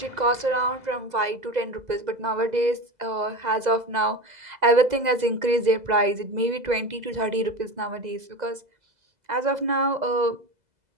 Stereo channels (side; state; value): left; late; 2.0 ms